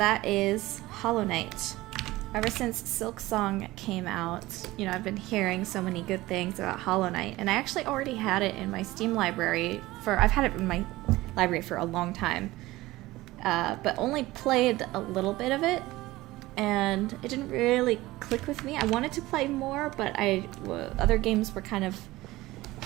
is Hollow Knight. Ever since Silksong came out, you know, I've been hearing so many good things about Hollow Knight, and I actually already had it in my Steam library I've had it in my library for a long time, but only played a little bit of it, and it didn't really click with me. I wanted to play more, but other games were kind of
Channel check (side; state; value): left; quieter; 18.5 dB